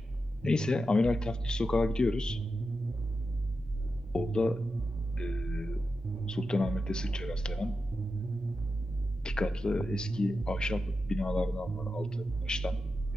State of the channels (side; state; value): both; normal; correlation 0.89